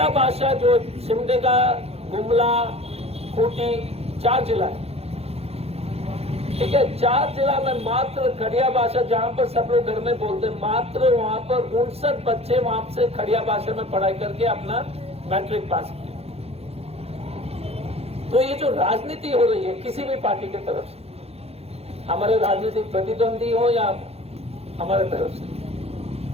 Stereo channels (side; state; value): left; late; 0.29 ms